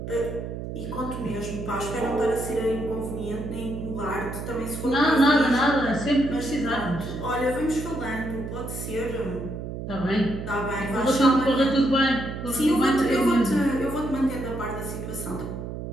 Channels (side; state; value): right; noise; hum, 7 dB below the sound